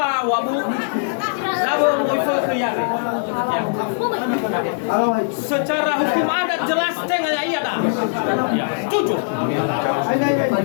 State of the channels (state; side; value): silent; right; digital silence